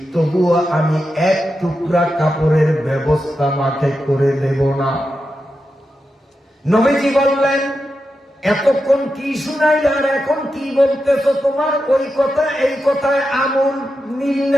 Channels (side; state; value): both; normal; correlation 0.88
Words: তবুও আমি 1 টুকরা কাপড়ের ব্যবস্থা মাকে করে দেব না। নবীজি বললেন, এতক্ষণ কি শুনাইল আর এখন কি বলতেছ? তোমার ওই কথা এই কথায় আমল মিল